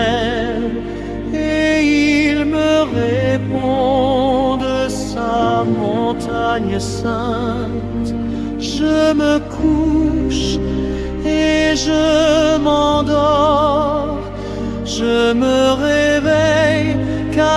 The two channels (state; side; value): identical; both; correlation 1.00